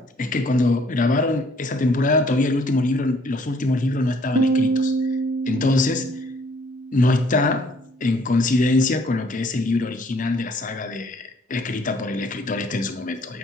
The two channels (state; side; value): normal; both; correlation 0.62